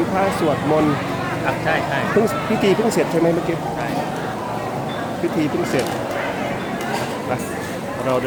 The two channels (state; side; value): identical; both; correlation 1.00